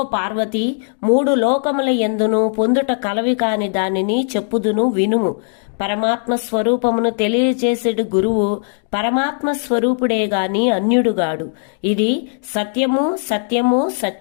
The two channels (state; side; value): silent; right; digital silence